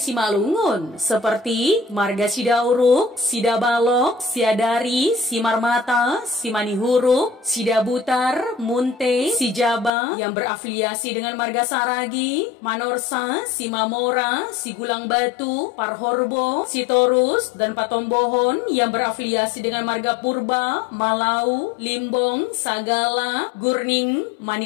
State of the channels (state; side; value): drops out; right; at 9.9 s